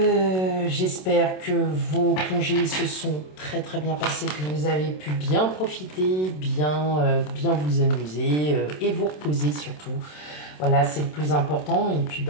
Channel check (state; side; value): late; right; 27 ms